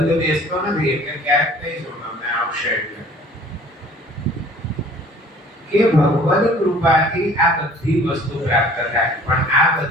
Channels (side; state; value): both; normal; correlation 0.51